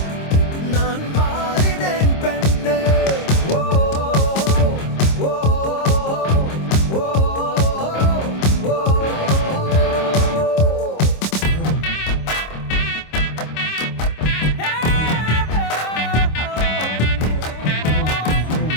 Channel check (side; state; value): right; late; 26 ms